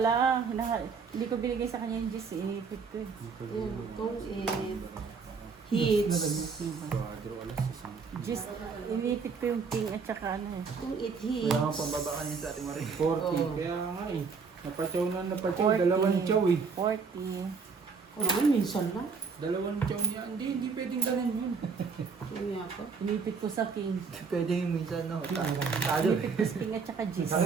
Hindi ko binigay sa kanya yung gis. Inipit ko eh. Itong it. Hits. Gis, inipit ko yung king at saka ano eh. Itong it Kaya nga hits. pambaba ka niya sa ating Marie. 40. Oo. Kaya nga eh. Napachaw na napachaw. 40. Dalawang chow eh. 40. O naman, minsan lang. Dalawang chow niya. Hindi pwedeng ganun yun. Kaya pa. Inipit ko sa king. Pwede yung minsan, no? Tado. Inipit ko sa king at saka gis.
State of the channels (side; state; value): left; quieter; 5.2 dB